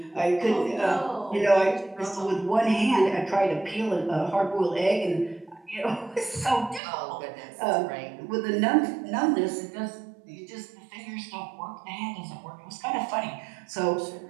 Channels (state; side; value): drops out; left; at 6.8 s